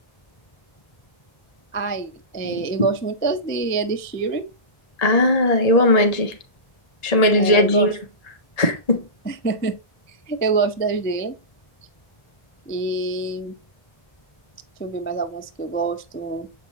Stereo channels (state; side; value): late; right; 1.7 ms